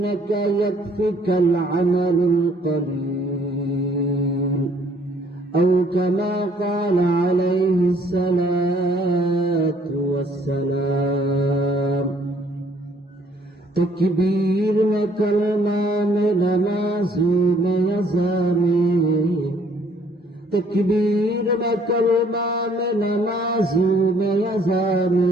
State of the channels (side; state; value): both; normal; correlation 0.62